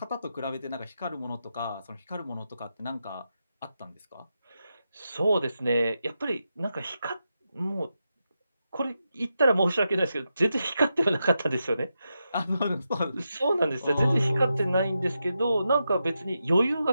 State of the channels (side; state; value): both; inverted; correlation -0.87